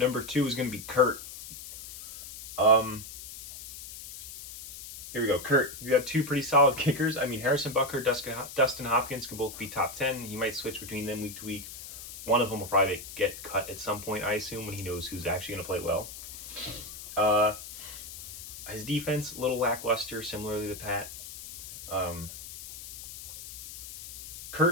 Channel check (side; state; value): left; noise; hiss, 12 dB below the sound